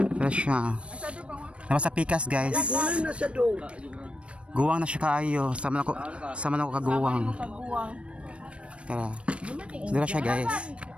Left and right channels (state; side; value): late; left; 0.060 ms